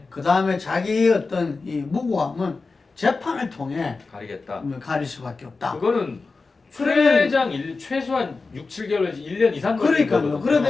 그 다음에 자기의 어떤 이 무고함은 재판을 통해 가리겠다. 가릴 수밖에 없다. 그거는 최장 최소한 6, 7개월 1년 이상 그러니까요.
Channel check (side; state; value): right; quieter; 4.0 dB